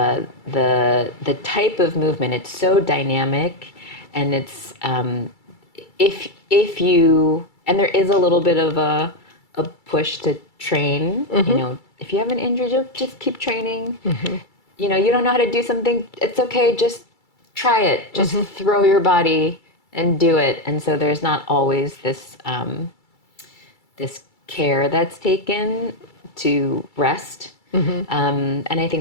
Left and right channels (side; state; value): right; late; 2.3 ms